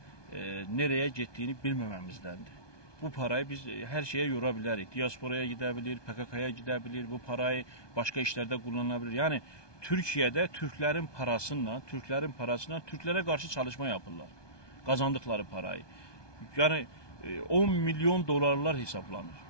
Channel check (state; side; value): late; right; 1.2 ms